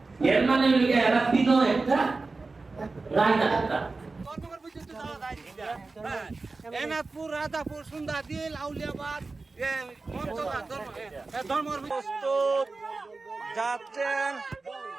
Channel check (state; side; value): quieter; left; 3.7 dB